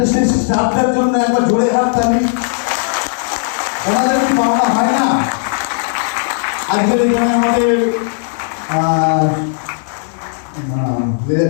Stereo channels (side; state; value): right; silent; 69 dB below the other